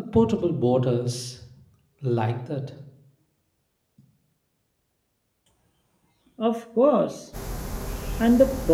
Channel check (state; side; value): identical; both; correlation 1.00